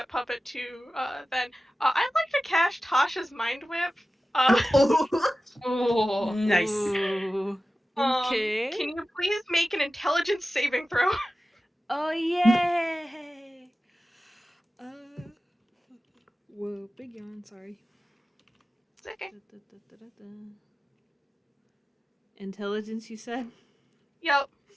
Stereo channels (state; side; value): normal; both; correlation 0.95